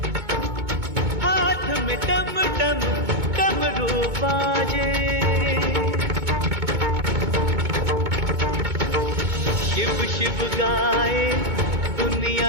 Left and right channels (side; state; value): left; late; 2.2 ms